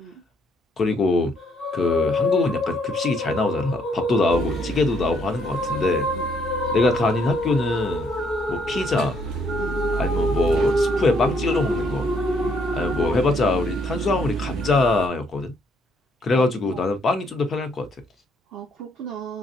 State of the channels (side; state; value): both; normal; correlation 0.69